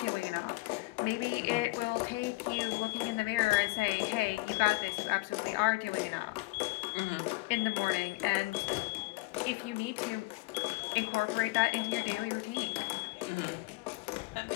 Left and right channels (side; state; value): right; quieter; 22.8 dB